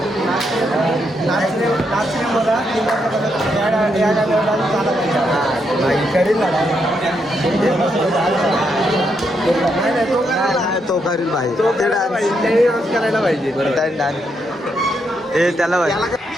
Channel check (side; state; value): both; normal; correlation 0.79